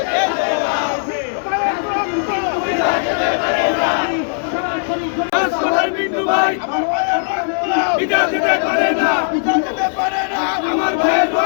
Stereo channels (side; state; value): right; silent; digital silence